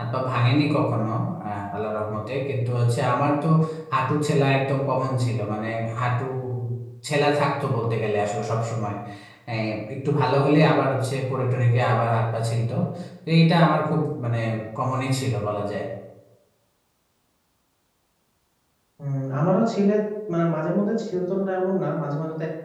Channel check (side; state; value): both; identical; correlation 1.00